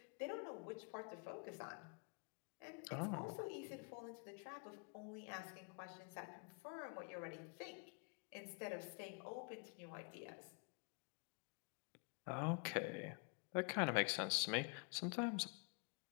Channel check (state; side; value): quieter; right; 37.9 dB